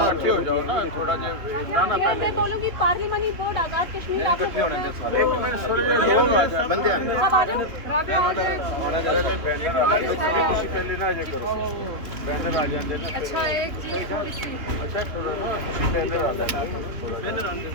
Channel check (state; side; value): late; left; 2.9 ms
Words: ये मैं बोलूँगी पार्लिमानी बोर्ड आजाद कश्मीर आप लोग अच्छा एक चीज